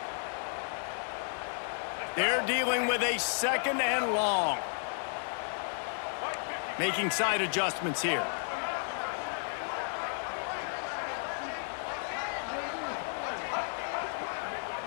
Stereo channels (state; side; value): silent; right; digital silence